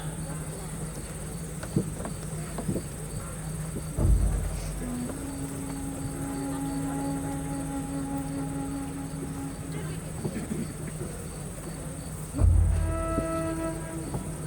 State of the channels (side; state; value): both; identical; correlation 1.00